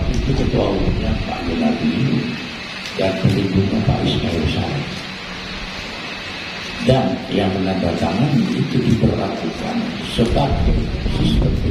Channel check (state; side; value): identical; both; correlation 1.00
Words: itu ketua umumnya Pak Yunadi dan pelindungnya Pak Ismail Sarif. Dan yang menandatangani itu diberlakukan sebagai sistem